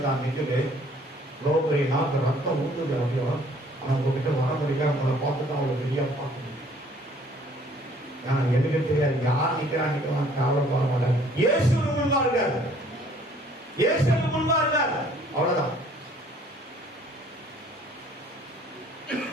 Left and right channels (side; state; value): both; normal; correlation 0.58